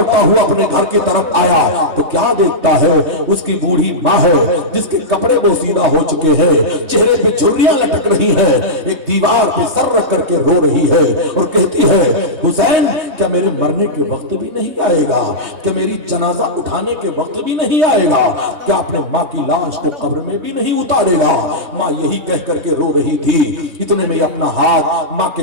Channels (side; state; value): left; late; 3.2 ms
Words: ہوا اپنے گھر کی طرف آیا تو کیا دیکھتا ہے؟ اس کی بوڑھی ماں ہے جس کے کپڑے بوسیدہ ہو چکے ہیں، چہرے پہ جھریاں لٹک رہی ہیں، ایک دیوار پہ سر رکھ کر کے رو رہی ہے اور کہتی ہے حسین کیا میرے مرنے کے وقت بھی نہیں آئے گا؟ کیا میری جنازہ اٹھانے کے وقت بھی نہیں آئے گا؟ کیا اپنے ماں کی لاش کو قبر میں بھی نہیں اتارے گا؟ ماں یہی کہہ کر کے رو رہی تھی۔ اتنے میں اپنا ہاتھ ماں کے